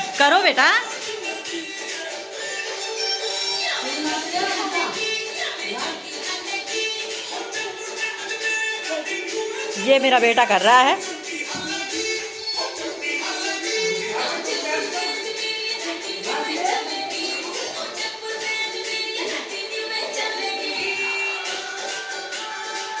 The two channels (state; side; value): identical; both; correlation 1.00